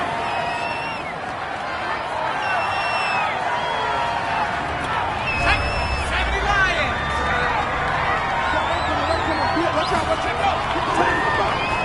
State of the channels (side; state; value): both; identical; correlation 1.00